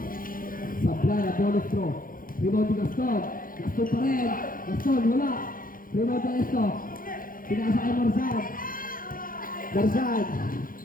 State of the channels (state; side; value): late; right; 0.41 ms